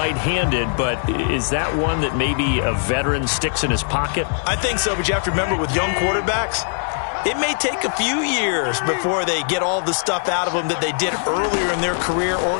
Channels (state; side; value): silent; right; digital silence